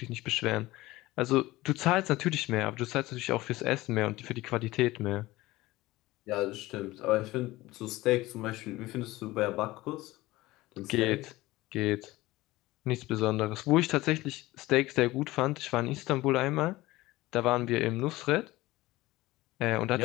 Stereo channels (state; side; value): quieter; right; 18.6 dB